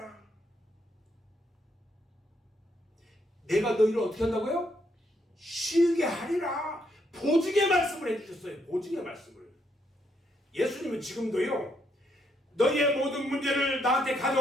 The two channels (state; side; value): normal; both; correlation 0.75